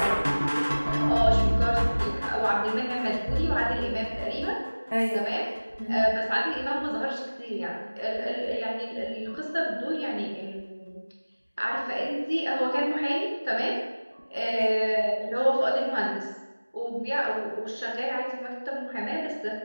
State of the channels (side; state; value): both; inverted; correlation -1.00